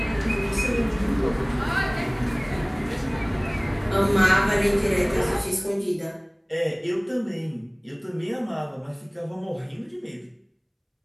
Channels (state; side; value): identical; both; correlation 1.00